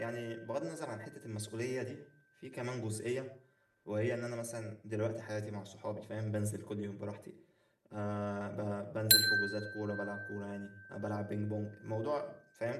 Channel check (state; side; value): identical; both; correlation 1.00